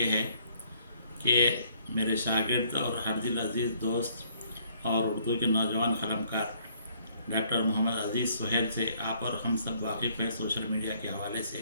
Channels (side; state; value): both; inverted; correlation -0.65